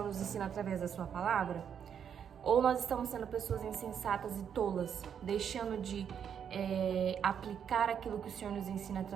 nos ensina através da sua palavra? Ou nós estamos sendo pessoas insensatas e tolas, deixando de aplicar aquilo que o Senhor nos ensina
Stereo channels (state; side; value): quieter; left; 8.1 dB